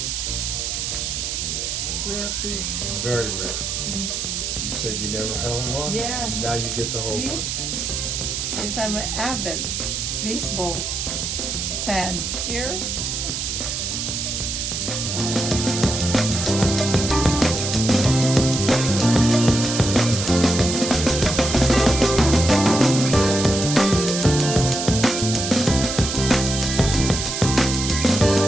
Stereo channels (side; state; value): right; noise; hiss, 3 dB below the sound